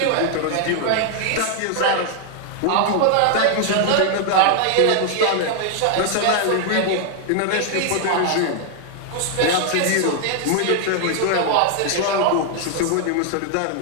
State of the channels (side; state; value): both; different; correlation 0.00